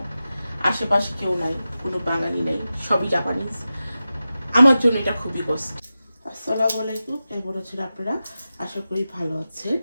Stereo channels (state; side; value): inverted; both; correlation -0.93